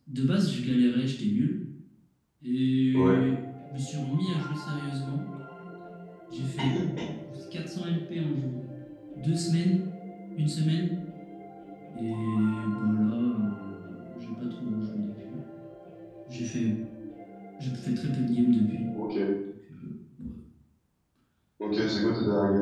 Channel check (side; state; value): both; identical; correlation 1.00